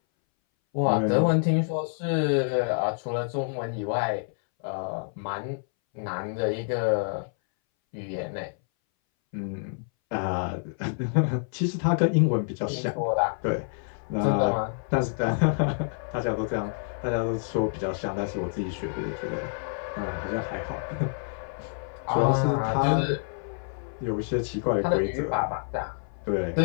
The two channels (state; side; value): silent; right; 60 dB below the other